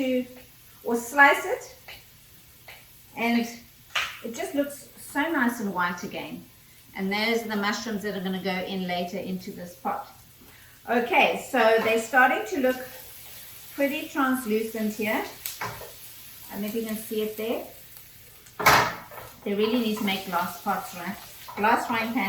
or slice it, and it just looks so nice and white again. And those are the mushrooms that are going to go in later into this pot. Okay, so they're starting to look pretty translucent here. I don't know if you can see it there. They really need to make glass pots, right? Glass frying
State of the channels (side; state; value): both; identical; correlation 1.00